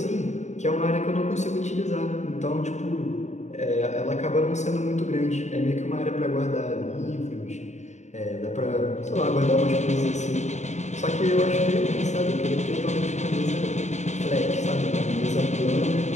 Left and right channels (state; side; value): late; right; 0.34 ms